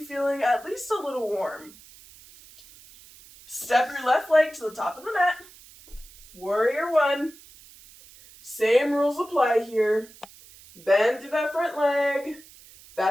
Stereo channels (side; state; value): right; noise; hiss, 22 dB below the sound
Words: at least a little warm. Step your left leg to the top of the mat. Warrior 1. Same rules apply here. Bend through that front leg.